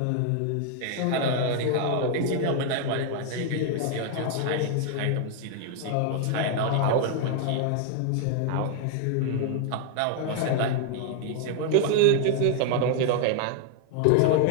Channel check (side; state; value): both; different; correlation 0.00